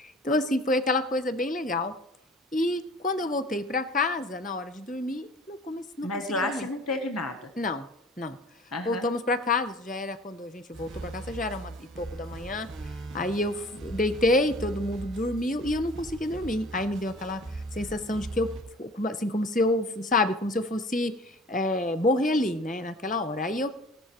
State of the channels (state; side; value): normal; both; correlation 0.46